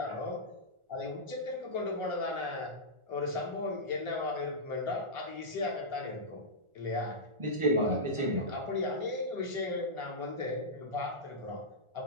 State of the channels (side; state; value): left; late; 1.4 ms